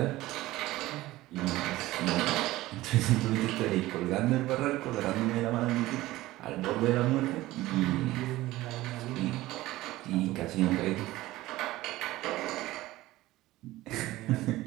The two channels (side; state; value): left; quieter; 17.3 dB